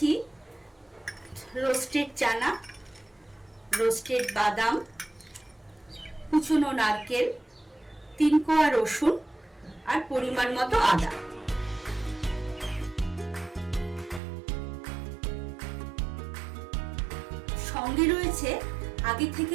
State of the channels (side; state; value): left; drops out; at 14.2 s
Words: রোস্টেড চানা, রোস্টেড বাদাম, কুচনো নারকেল, 3 কোয়া রসুন আর পরিমাণ মতো আদা। সঙ্গে রয়েছে আগে